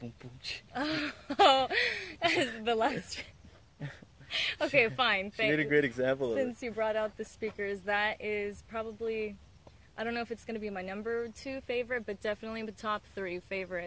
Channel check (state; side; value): identical; both; correlation 1.00